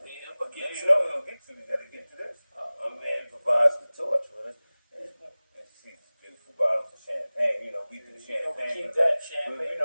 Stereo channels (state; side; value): inverted; both; correlation -0.99